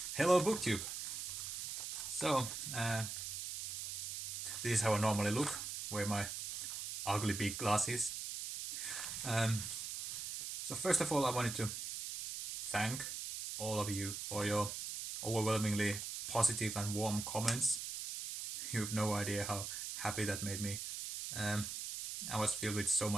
hello booktube. So, uh, this is how I normally look, wear my ugly big glasses. So first of all, I wanted to thank all of you for your overwhelmingly positive and warm comments. You have no idea how happy that made me. I was filled with so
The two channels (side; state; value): right; noise; hiss, 5 dB below the sound